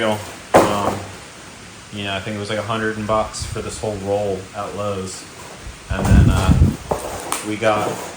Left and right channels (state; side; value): identical; both; correlation 1.00